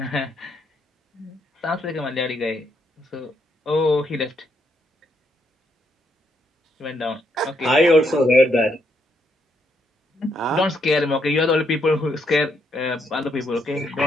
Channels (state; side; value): normal; both; correlation 0.75